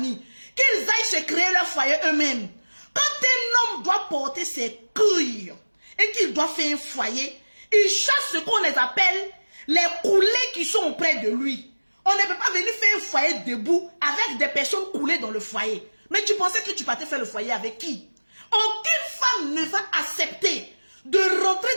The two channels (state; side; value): inverted; both; correlation -1.00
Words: Qu'ils aillent se créer leur foyer eux-mêmes. Quand un homme doit porter ses couilles et qu'il doit faire un foyer, il chasse ce qu'on les appelle les coulés qui sont auprès de lui. On ne peut pas venir faire un foyer debout avec des personnes coulées dans le foyer. Mais tu pensais que tu partais faire le foyer avec qui? Aucune femme ne va accepter de rentrer